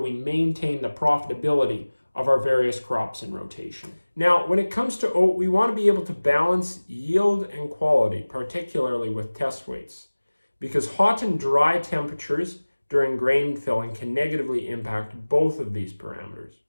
maintain the profitability of our various crops in rotation. Now, when it comes to oat, we want to be able to balance yield and quality, particularly with test weights, because hot and dry temperatures during grain filling can negatively impact both of these parameters.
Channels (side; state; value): both; inverted; correlation -1.00